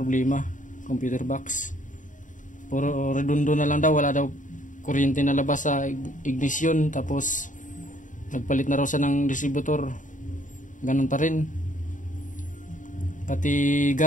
computer box. Puro redondo na lang daw, wala daw kuryente na labas sa ignition, tapos nagpalit na raw siya ng distributor, ganun pa rin. Pati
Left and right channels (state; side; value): late; right; 0.37 ms